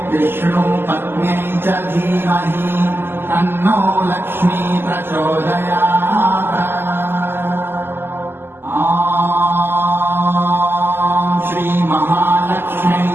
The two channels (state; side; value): late; left; 0.11 ms